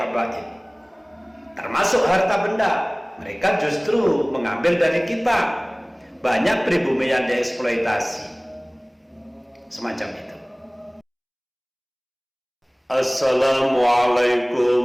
termasuk harta benda. Mereka justru mengambil dari kita. Banyak pribumi yang dieksploitasi semacam itu.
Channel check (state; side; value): identical; both; correlation 1.00